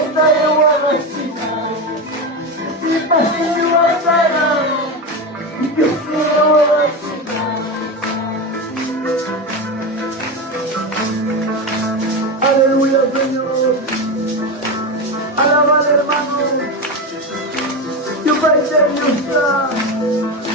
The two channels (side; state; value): both; normal; correlation 0.18